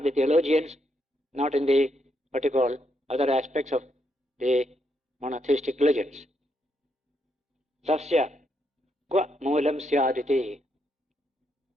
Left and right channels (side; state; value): both; normal; correlation 0.78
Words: the theologians, not in the, what you call, other aspects of the monotheistic religions. Tasya kwa moolam syaditi.